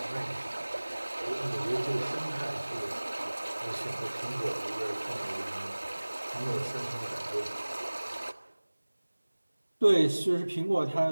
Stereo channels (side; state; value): both; inverted; correlation -1.00